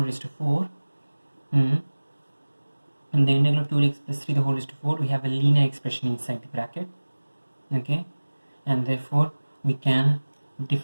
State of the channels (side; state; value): both; inverted; correlation -1.00